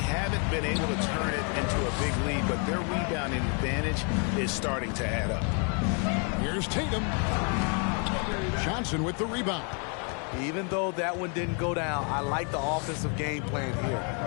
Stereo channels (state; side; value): quieter; right; 38.6 dB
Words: been able to turn it into a big lead, but their rebounding advantage is starting to add up. Here's Tatum. Johnson with the rebound. Even though that one didn't go down, I like the offensive game plan